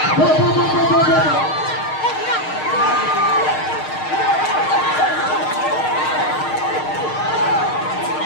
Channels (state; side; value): late; right; 6.5 ms